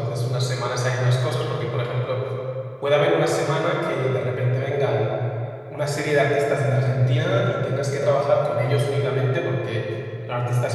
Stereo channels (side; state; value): both; identical; correlation 1.00